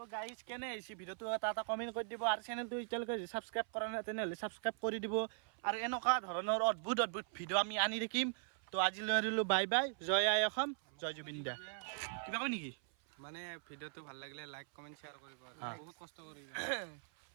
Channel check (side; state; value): left; silent; 51 dB below the other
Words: গাইজ কেনে আহিছে ভিডিঅ'টো এটা কমেণ্ট কৰি দিব আৰু চেনেলটো এতিয়ালৈকে ছাবস্ক্ৰাইব কৰা নাই তেনেহ'লে ছাবস্ক্ৰাইব কৰি দিব আৰু এনেকুৱা ধৰণৰ অদ্ভুত ভিডিঅ' আমি আনি থাকিম তো আজিলৈ আহিলোঁ বাই বাই জয় আই অসম জয় জুবিন দা কিবা কয় নেকি মানে ভিডিঅ'টো ভাল লাগিলে লাইক কমেণ্ট শ্বেয়াৰ কৰিব বহুত কষ্ট কৰি